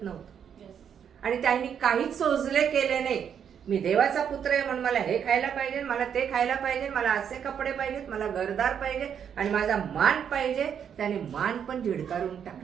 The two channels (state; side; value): quieter; left; 8.1 dB